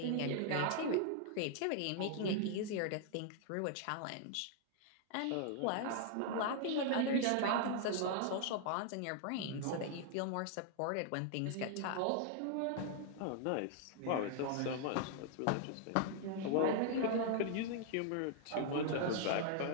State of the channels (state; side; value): different; both; correlation 0.00